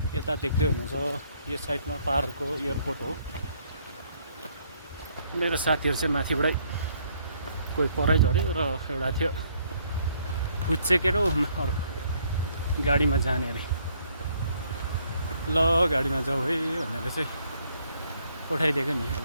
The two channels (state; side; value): inverted; both; correlation -0.67